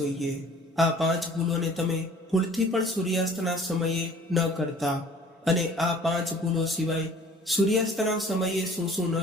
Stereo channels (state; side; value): normal; both; correlation 0.51